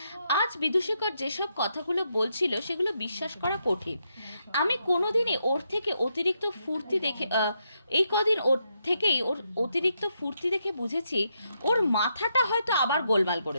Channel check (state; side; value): inverted; both; correlation -0.80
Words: আজ বিদূষকর যেসব কথাগুলো বলছিল সেগুলো বিশ্বাস করা কঠিন। আমি কোনোদিনই ওর থেকে অতিরিক্ত ফুর্তি দেখে ওর অতিরিক্ত ফুর্তি দেখে বুঝেছি ওর মাথাটা হয়তো আবার গোলমাল